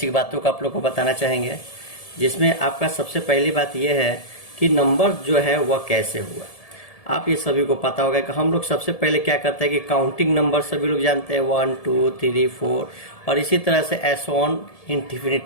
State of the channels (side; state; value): right; late; 1.7 ms